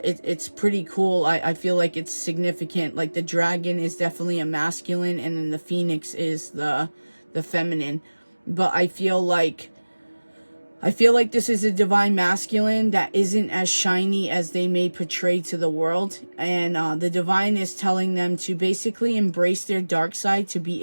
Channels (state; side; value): inverted; both; correlation -1.00